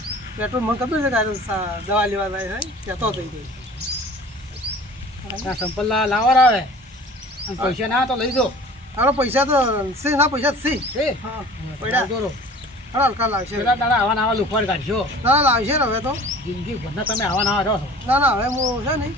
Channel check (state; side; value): normal; both; correlation 0.44